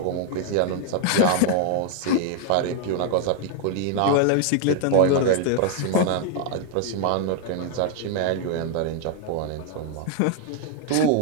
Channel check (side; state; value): both; different; correlation 0.00